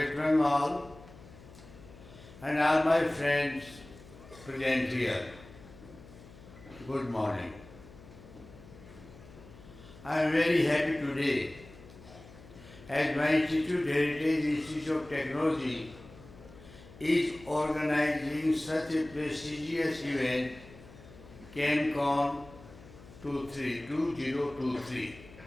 and all my friends present here. Good morning. I am very happy today as my institute, Heritage Institute of Technology, is organizing such a prestigious event, ChemCon 2023.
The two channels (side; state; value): left; noise; hum, 20 dB below the sound